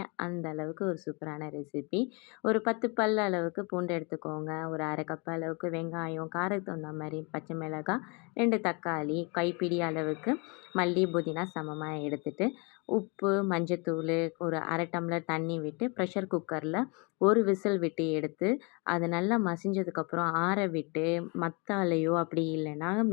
அந்த அளவுக்கு ஒரு சூப்பரான ரெசிபி. ஒரு 10 பல் அளவுக்கு பூண்டு எடுத்துக்கோங்க. ஒரு 1/2 கப் அளவுக்கு வெங்காயம், காரத்துக்கு தகுந்த மாரி பச்சை மிளகாய், 2 தக்காளி, கைப்பிடி அளவுக்கு மல்லி, புதினா சமமா எடுத்துட்டு, உப்பு, மஞ்சத்தூளு, ஒரு 1/2 டம்ளர் தண்ணி விட்டு ப்ரெஷர் குக்கரில ஒரு விசில் விட்டு எடுத்து அது நல்லா மசிஞ்சதுக்கப்புறம் ஆற விட்டு மத்தாலையோ அப்படி இல்லைன்னா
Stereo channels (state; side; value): quieter; right; 31.4 dB